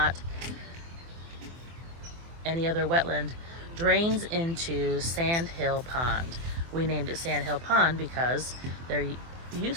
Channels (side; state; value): left; late; 24 ms